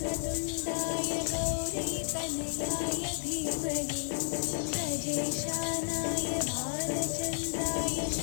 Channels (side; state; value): right; silent; digital silence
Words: गौरीतनयाय धीमहि गजेशानाय भालचन्द्राय